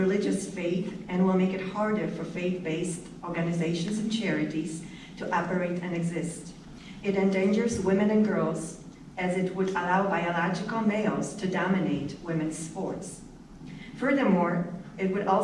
faith and will make it harder for faith-based organizations and charities to operate and exist. It endangers women and girls as it would allow biological males to dominate women's sports. Furthermore, it would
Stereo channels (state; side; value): identical; both; correlation 1.00